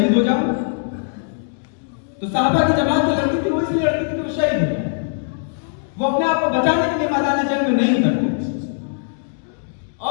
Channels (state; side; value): silent; right; digital silence